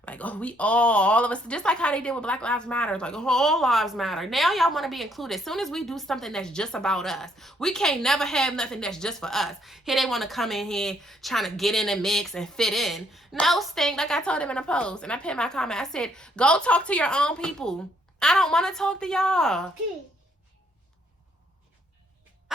Like, oh, we all of us, just like how they did with Black Lives Matter. Like, all lives matter. Now y'all want to be included. As soon as we do something that's just about us, we can't never have nothing that's just for us. Here they want to come in here trying to get in the mix and fit in. No, stink. Like I told them in a post, and I put in my comment, I said, go talk to your own people. I don't want to talk to y'all.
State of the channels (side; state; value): both; normal; correlation 0.69